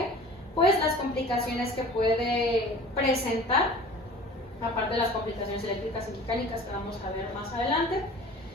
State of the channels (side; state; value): both; normal; correlation 0.43